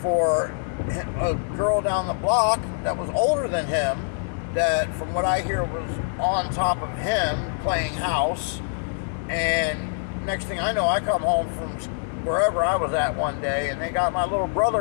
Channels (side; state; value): right; silent; digital silence